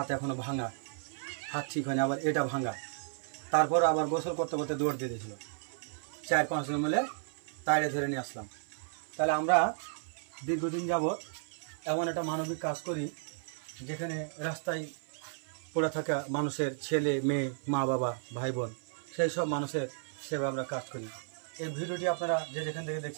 এখনও ভাঙা হাত ঠিক হয়নি আবার এটা ভাঙা তারপর আবার গোসল করতে করতে দৌড় দিয়ে দিয়েছিল 4-5 জন মিলে তাড়ে ধরে নিয়ে আসলাম তাহলে আমরা দীর্ঘদিন যাবৎ এমন একটা মানবিক কাজ করি যেখানে রাস্তায় পড়ে থাকা মানুষের ছেলে মেয়ে মা বাবা ভাই বোন সেই সব মানুষের সেবা আমরা কাজ করি এই ভিডিওটি আপনারা যে যেখান থেকে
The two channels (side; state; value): left; silent; 55 dB below the other